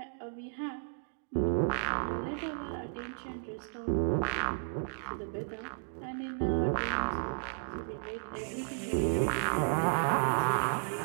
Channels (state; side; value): silent; left; digital silence